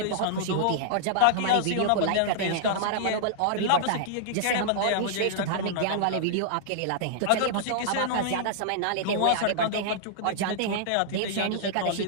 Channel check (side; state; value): both; different; correlation -0.01